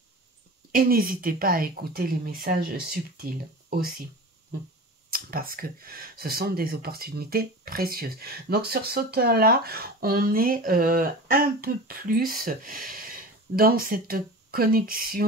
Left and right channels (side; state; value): both; normal; correlation 0.33